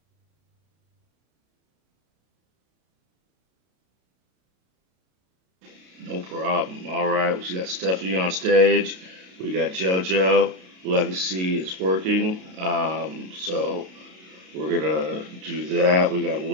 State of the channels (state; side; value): late; left; 33 ms